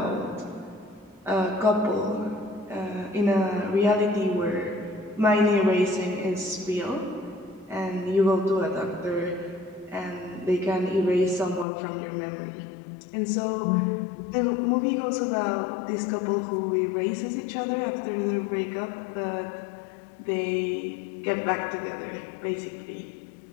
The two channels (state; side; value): drops out; right; at 11.7 s